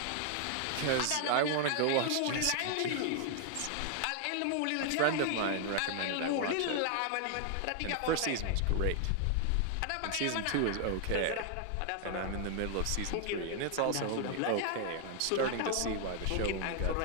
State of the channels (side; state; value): both; different; correlation 0.00